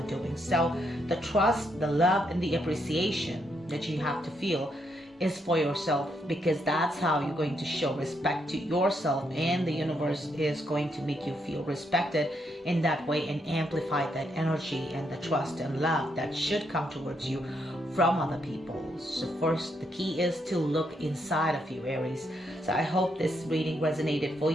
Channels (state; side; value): normal; both; correlation 0.77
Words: doing. So the trust, the love, and the appreciation that you have to feel is for yourself, because that's how you're going to show respect to yourself, and the universe is going to make you feel respected in that way and amplify that energy and the trust and love that should come towards you from other people. So first, the key is to look inside of you, Aries. So I hope this reading resonated for